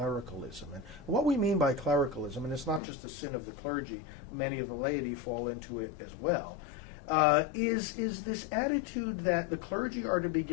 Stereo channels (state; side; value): drops out; right; at 2.8 s